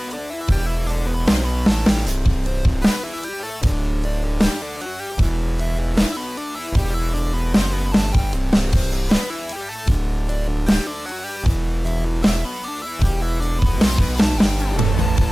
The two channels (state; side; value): normal; both; correlation 0.98